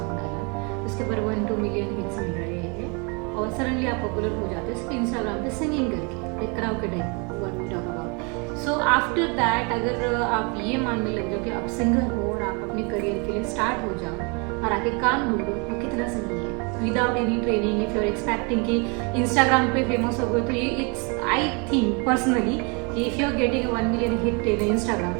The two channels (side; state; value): left; quieter; 32.7 dB